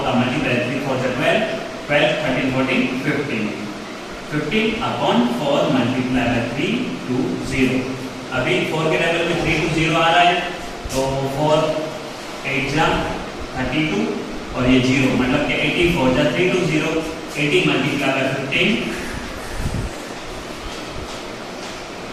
का मल्टीप्लाई, 3 4 12, 12 13 14 15, 15/4 मल्टीप्लाई बाय 320। अभी 4 के टेबल में 320 आ रहा है, तो 4 8 जा 32 और ये 0 मतलब कि 84 जा 320, 80 मल्टीप्लाई बाय 15,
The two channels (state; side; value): identical; both; correlation 1.00